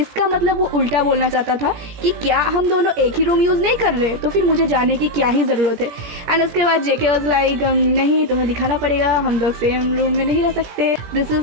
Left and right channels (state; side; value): late; left; 17 ms